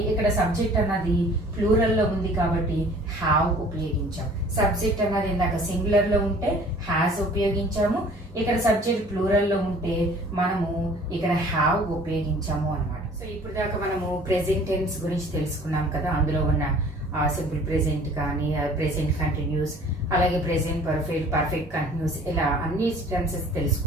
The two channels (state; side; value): normal; both; correlation 0.51